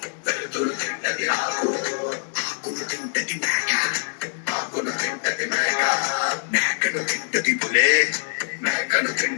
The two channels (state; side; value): silent; right; digital silence